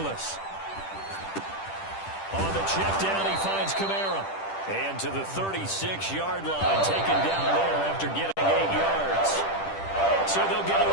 On the check down, he finds Kamara. And to the 36-yard line, taken down there after getting 8 yards. So they'll get a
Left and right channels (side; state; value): right; late; 10 ms